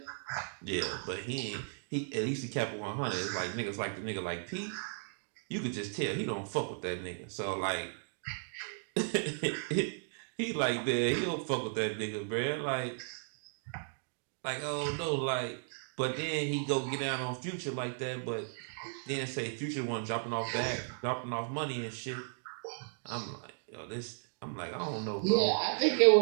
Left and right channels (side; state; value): left; silent; digital silence